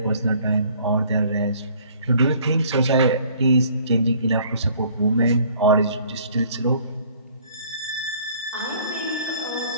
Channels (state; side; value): inverted; both; correlation -0.56